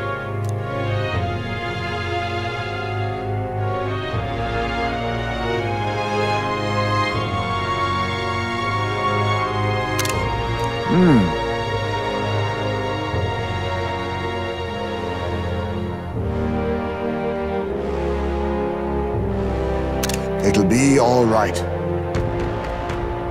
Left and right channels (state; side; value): identical; both; correlation 1.00